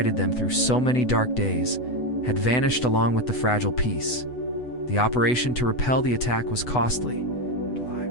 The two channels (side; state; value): right; late; 8.0 ms